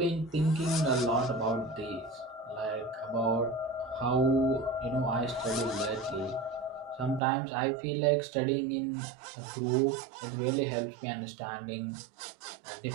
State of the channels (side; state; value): left; drops out; at 7.2 s